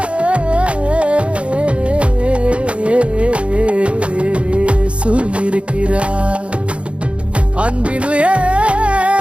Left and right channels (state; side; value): late; left; 0.060 ms